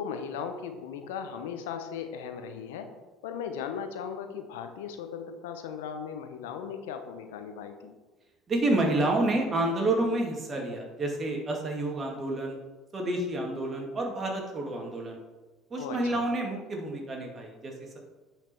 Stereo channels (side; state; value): both; normal; correlation 0.55